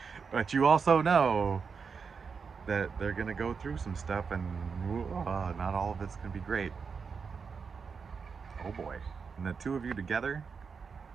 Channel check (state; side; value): quieter; left; 5.6 dB